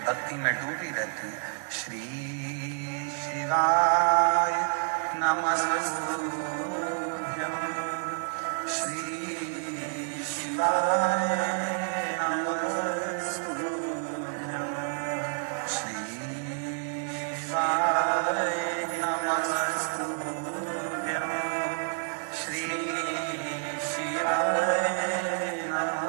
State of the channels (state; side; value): silent; left; digital silence